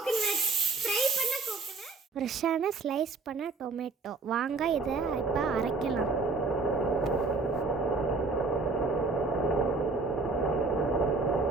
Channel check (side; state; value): left; quieter; 4.0 dB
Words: ஃப்ரை பண்ண கோகனட், ஃப்ரெஷ்ஷான ஸ்லைஸ் பண்ண டொமேட்டோ. வாங்க இதை இப்போ அரைக்கலாம்.